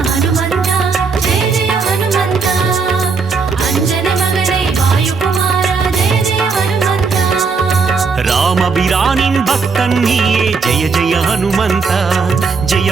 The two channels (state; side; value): quieter; left; 4.9 dB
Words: ராமபிரானின் பக்தன் நீயே ஜெய ஜெய ஹனுமந்தா